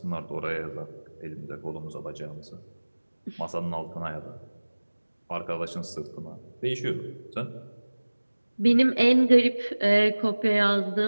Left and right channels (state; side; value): inverted; both; correlation -1.00